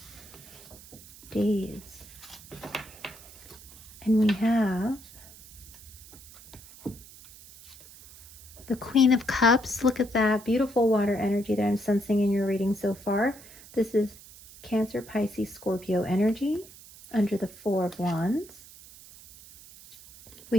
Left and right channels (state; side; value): noise; right; hiss, 20 dB below the sound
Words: days. And we have the Queen of Cups. Look at that beautiful water energy that I'm sensing in your reading so far. This is Cancer, Pisces, Scorpio energy under the Four of Wands.